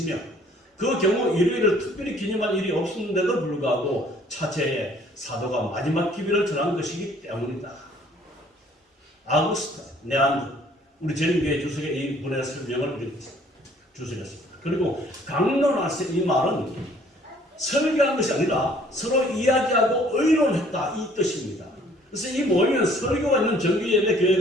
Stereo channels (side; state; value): both; normal; correlation 0.58